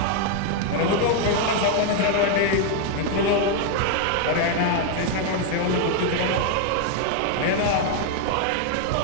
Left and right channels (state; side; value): different; both; correlation 0.00